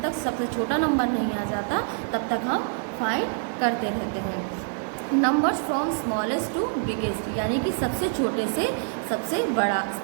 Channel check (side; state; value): left; silent; 61 dB below the other